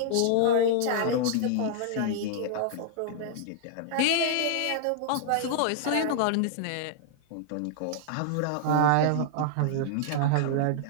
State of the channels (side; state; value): both; different; correlation -0.01